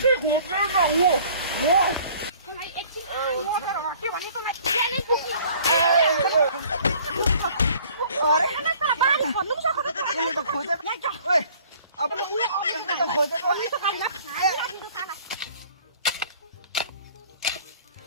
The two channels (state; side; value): inverted; both; correlation -0.53